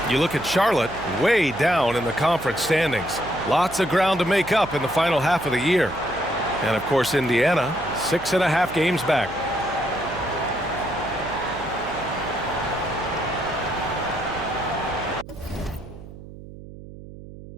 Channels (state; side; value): noise; right; hum, 15 dB below the sound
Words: You look at Charlotte, way down in the conference standings. Lots of ground to make up in the final half of the year. And of course, Indiana, 6.5 games back.